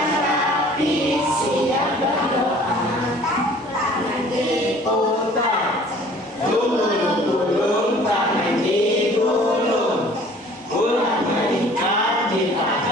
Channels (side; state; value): both; normal; correlation 0.51